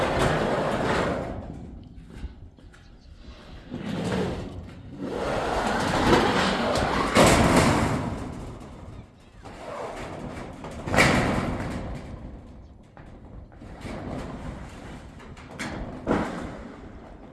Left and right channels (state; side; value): identical; both; correlation 1.00